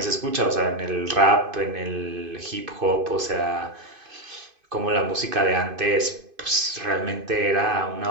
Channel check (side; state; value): left; late; 2.5 ms